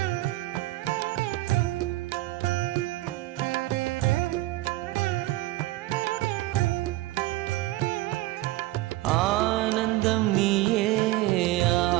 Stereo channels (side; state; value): left; quieter; 17.8 dB